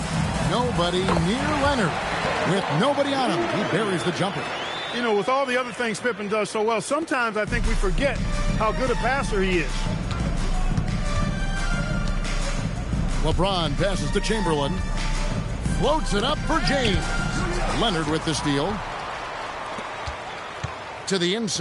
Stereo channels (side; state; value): both; identical; correlation 1.00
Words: Nobody near Leonard. With nobody on him, he buries the jumper. You know, with all the other things Pippen does so well, sometimes I think we forget how good a passer he is. LeBron passes to Chamberlain. Floats it up for James. Leonard with the steal. To the